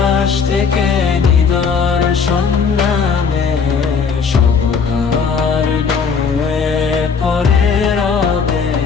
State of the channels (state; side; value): quieter; right; 5.8 dB